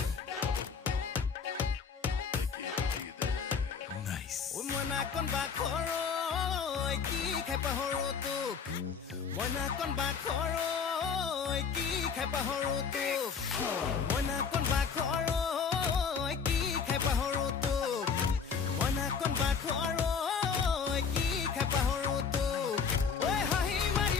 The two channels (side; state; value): right; quieter; 6.1 dB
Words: নাইস ওই মনা কোন বা খরই কি খাই পাহৰো তোক মনা কোন বা খৰই কি খাই পাহৰো তোক মনা কোন বা খৰই কি খাই পাহৰো তোক মনা কোন বা খৰই কি খাই পাহৰো তোক ঐ হাঁহি মাৰি